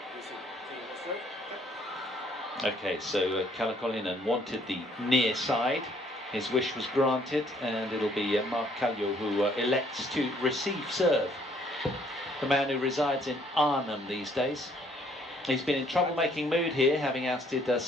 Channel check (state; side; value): normal; both; correlation 0.64